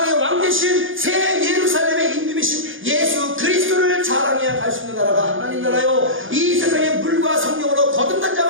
왕 되신 새 예루살렘의 임금이신 예수 그리스도를 자랑해야 갈 수 있는 나라가 하나님 나라요. 이 세상에 물과 성령으로 거듭난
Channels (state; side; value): late; left; 0.58 ms